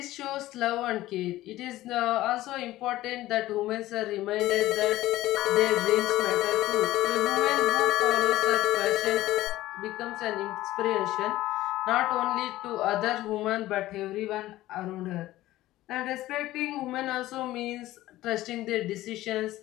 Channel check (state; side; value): quieter; right; 16.0 dB